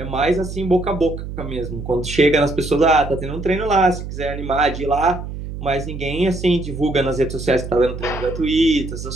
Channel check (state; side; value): noise; right; hum, 8 dB below the sound